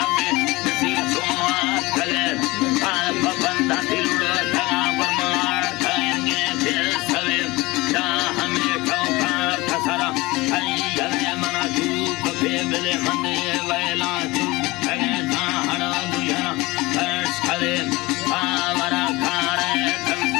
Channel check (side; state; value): right; quieter; 21.7 dB